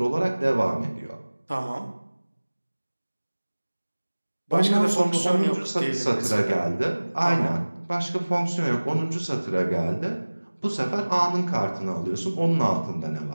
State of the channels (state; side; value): inverted; both; correlation -1.00